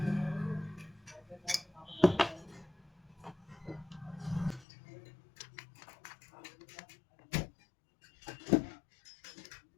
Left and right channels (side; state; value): right; drops out; at 4.7 s